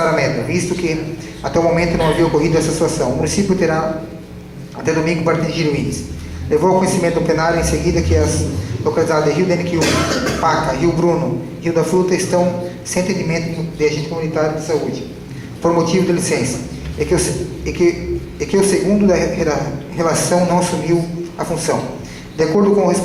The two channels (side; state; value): both; identical; correlation 1.00